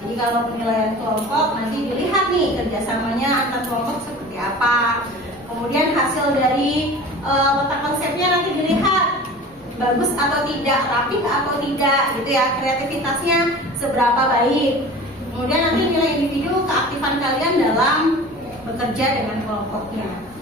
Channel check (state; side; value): normal; both; correlation 0.39